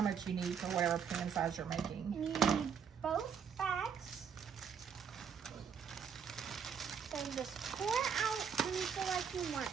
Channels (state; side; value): quieter; left; 7.0 dB